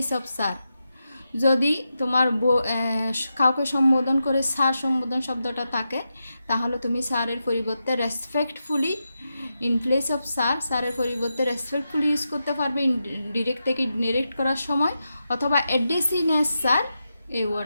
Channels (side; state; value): both; inverted; correlation -0.88